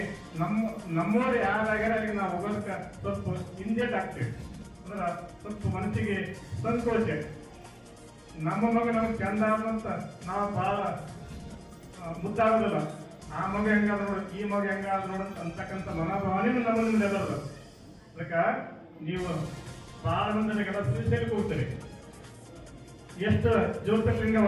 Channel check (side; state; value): both; identical; correlation 1.00